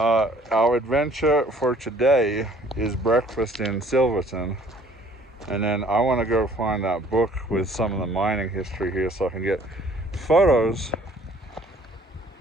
adventure for today is breakfast in Silverton, and then I want to go find that book with some of the mining history here so I can get photos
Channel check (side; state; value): both; normal; correlation 0.56